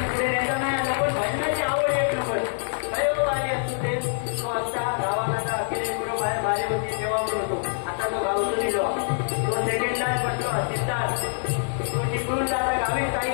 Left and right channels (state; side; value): silent; right; 62 dB below the other